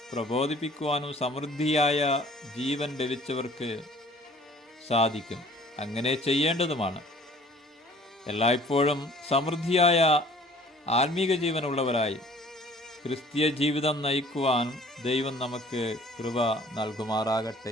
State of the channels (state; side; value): normal; both; correlation 0.53